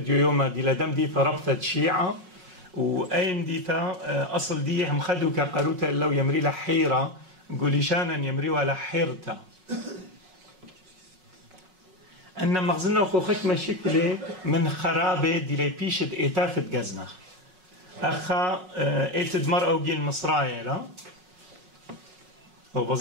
يوم دي لدم ديثة ربطة شيعة وأين ديتا أصل دي هم خدوا كقروتا لو يمري لحيرة قولي شانا يمري ولا حيرتا أن مغزنا وخوخك مشكلة من خرابة دي لي بيشت إيتافت جزنخ أخا إيتد مرأة وجيل مصرايا لا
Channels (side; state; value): left; late; 5.4 ms